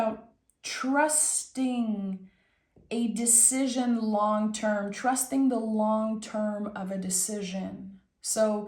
trusting a decision long term, trusting the long term of a decision.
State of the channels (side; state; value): both; identical; correlation 1.00